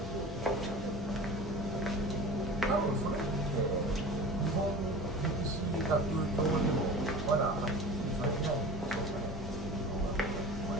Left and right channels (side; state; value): both; normal; correlation 0.37